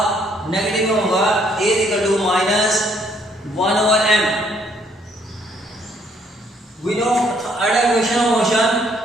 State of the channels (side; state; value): both; normal; correlation 0.67